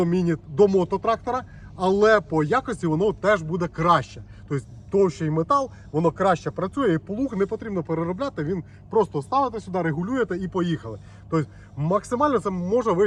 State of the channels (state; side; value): identical; both; correlation 1.00